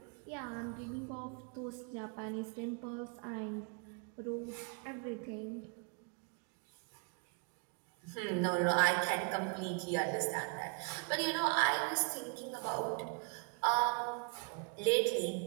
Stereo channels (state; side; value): quieter; left; 39.5 dB